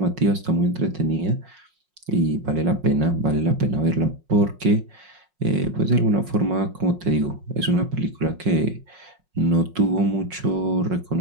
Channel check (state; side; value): late; left; 5.5 ms